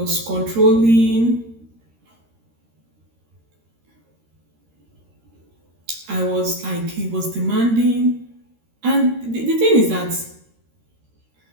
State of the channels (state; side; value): late; left; 13 ms